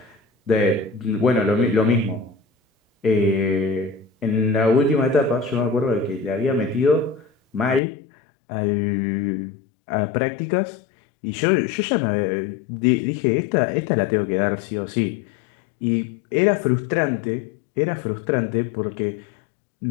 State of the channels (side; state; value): right; drops out; at 7.8 s